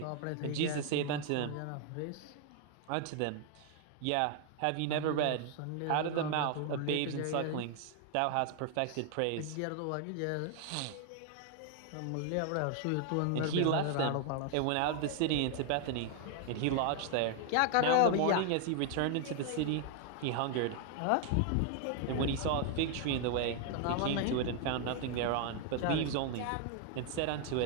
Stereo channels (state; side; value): different; both; correlation 0.00